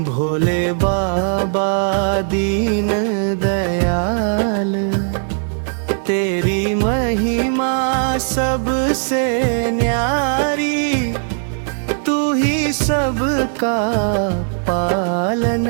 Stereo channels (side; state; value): left; silent; digital silence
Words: भोले बाबा दीन दयाल। तेरी महिमा सबसे न्यारी, तू ही सबका